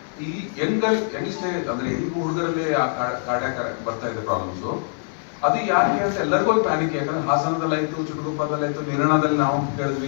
ಈ ಯಂಗ್ಸ್ಟೇಜ್ ಅಂದ್ರೆ ಹೆಂಗ್ ಹುಡುಗರಲ್ಲಿ ಕಾರ್ಡಿಯಾಕ್ ಬರ್ತಾ ಇದೆ ಪ್ರಾಬ್ಲಮ್ಸ್. ಅದು ಯಾಕೆ ಅಂತ ಎಲ್ಲರಿಗೂ ಒಂದು ಪ್ಯಾನಿಕ್. ಯಾಕಂದ್ರೆ ಹಾಸನದಲ್ಲಾಯ್ತು, ಚಿಕ್ಕಬಳ್ಳಾಪುರದಲ್ಲಾಯ್ತು, ನಿರ್ಣಾದಲ್ಲಿ ನಾವು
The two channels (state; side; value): silent; right; digital silence